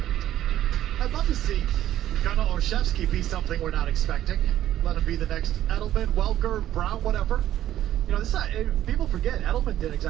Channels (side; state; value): left; quieter; 12.5 dB